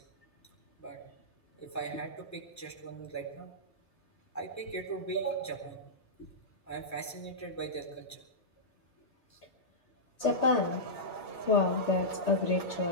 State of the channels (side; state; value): both; normal; correlation -0.13